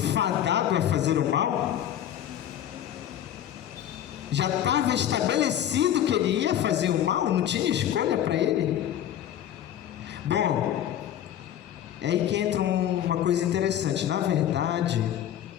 fadado a fazer o mal? Já estava estabelecido que ele ia fazer o mal? Não tinha escolha para ele? Bom, é aí que entra uma coisa interessante. Na verdade,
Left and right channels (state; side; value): quieter; right; 10.9 dB